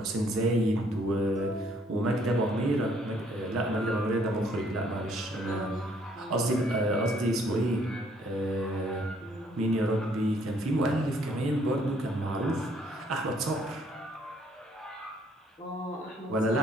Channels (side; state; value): both; normal; correlation 0.65